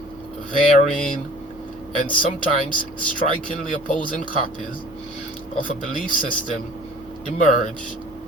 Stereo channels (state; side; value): normal; both; correlation 0.48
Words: varying and sometimes strikingly opposing copies of a belief system emerge